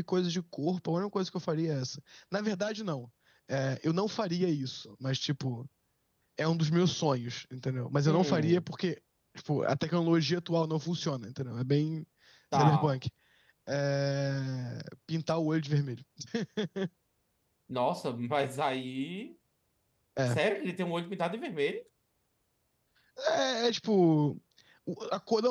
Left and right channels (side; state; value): both; identical; correlation 1.00